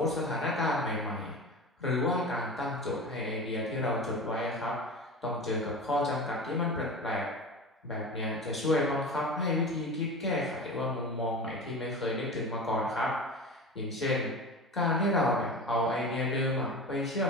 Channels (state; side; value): normal; both; correlation 0.31